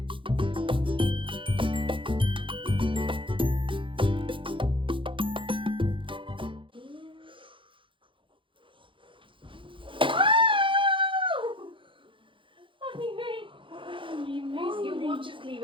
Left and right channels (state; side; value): late; left; 0.25 ms